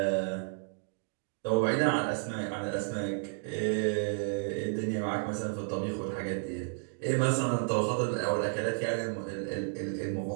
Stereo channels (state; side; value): silent; left; 56 dB below the other